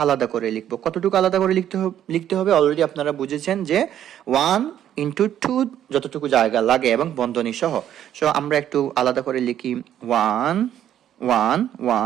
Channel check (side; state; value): left; quieter; 10.7 dB